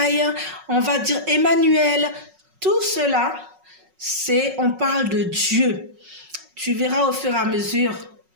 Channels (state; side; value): late; left; 5.4 ms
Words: on va dire Emmanuel. Tout cela, on parle de Dieu. Tu verras au fur et à mesure